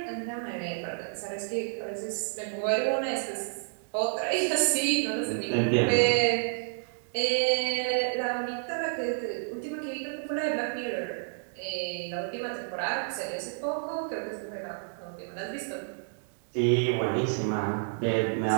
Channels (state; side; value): silent; left; digital silence